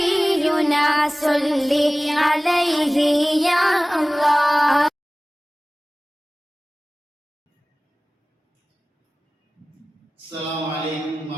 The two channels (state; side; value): normal; both; correlation 0.98